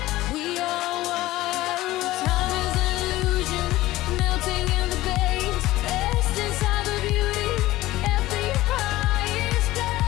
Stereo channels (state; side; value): quieter; right; 17.1 dB